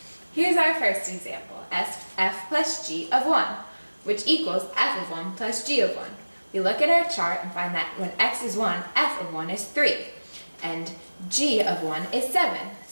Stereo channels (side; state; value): both; inverted; correlation -1.00